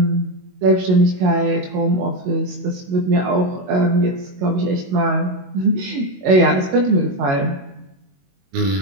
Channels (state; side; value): late; left; 22 ms